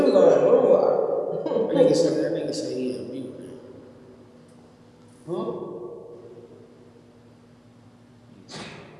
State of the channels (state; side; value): identical; both; correlation 1.00